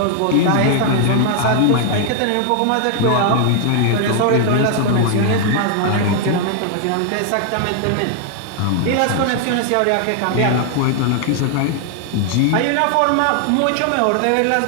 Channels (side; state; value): both; different; correlation 0.00